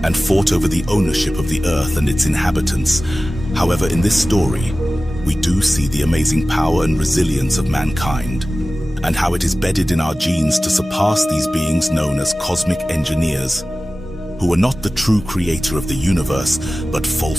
and fought over the ownership of the earth and its inhabitants. However, in this story, we do see the amazing power and resilience of mankind, and how it is bedded in our genes to surpass these beings known as cosmic engineers, who are not the true creator of the universe, but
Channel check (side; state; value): both; normal; correlation 0.96